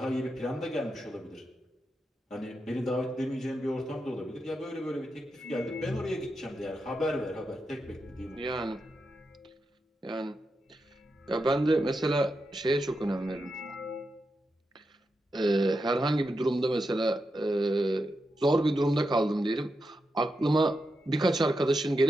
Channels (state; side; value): normal; both; correlation 0.87